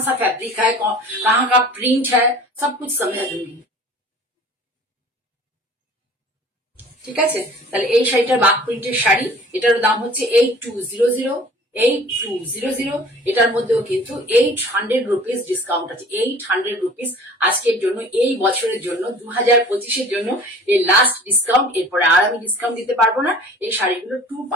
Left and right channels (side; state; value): both; normal; correlation 0.47